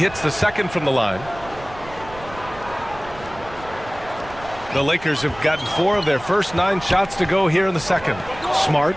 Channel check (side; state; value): right; noise; rumble, 17 dB below the sound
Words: the second from the line. The Lakers have gotten 4 of their first 9 shots to go here in the second. Smart